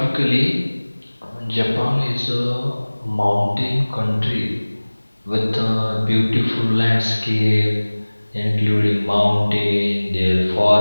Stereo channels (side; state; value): both; inverted; correlation -1.00